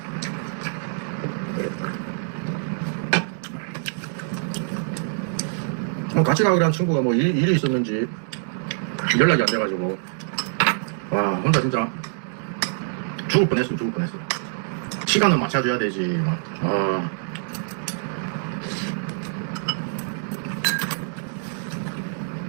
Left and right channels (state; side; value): silent; left; digital silence